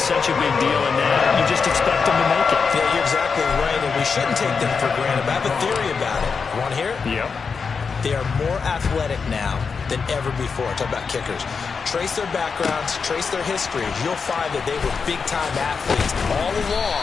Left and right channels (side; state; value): right; quieter; 5.4 dB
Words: a big deal, and now you just expect them to make it. Yeah, you're exactly right, and we shouldn't take them for granted. But I have a theory about it. You want to hear it? Yep. They are more athletic now than ever before. Talk about kickers. Trace their backgrounds, trace their history. You'll find that they were big-time athletes all